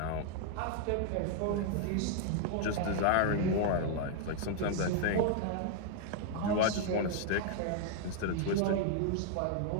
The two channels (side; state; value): both; different; correlation 0.00